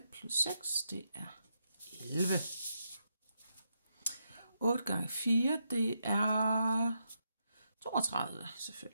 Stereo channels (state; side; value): inverted; both; correlation -0.82